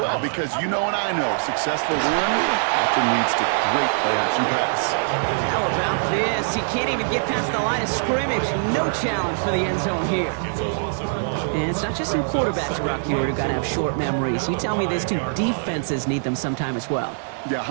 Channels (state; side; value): silent; left; 63 dB below the other